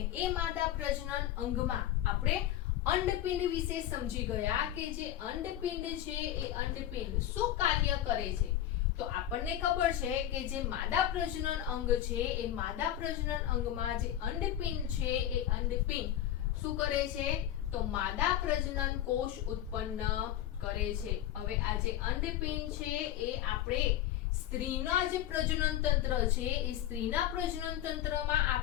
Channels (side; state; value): right; quieter; 12.2 dB